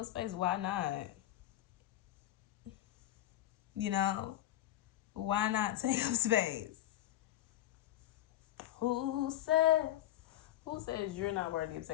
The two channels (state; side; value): quieter; right; 13.6 dB